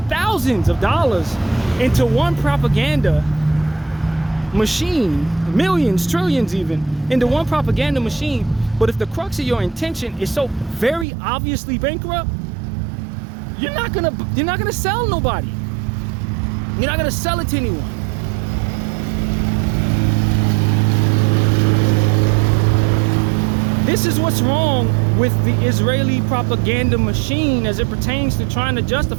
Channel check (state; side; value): drops out; left; at 11.1 s